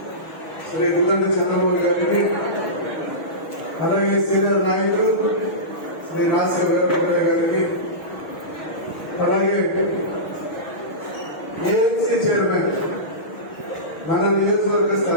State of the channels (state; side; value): late; right; 6.4 ms